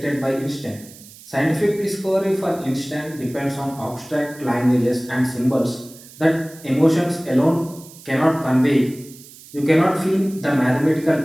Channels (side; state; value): right; noise; hiss, 20 dB below the sound